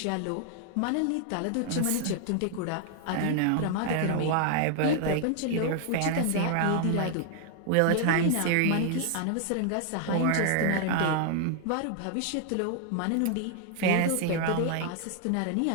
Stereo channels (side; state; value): both; different; correlation 0.00